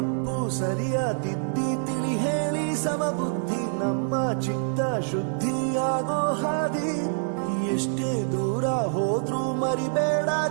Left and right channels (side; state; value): left; silent; digital silence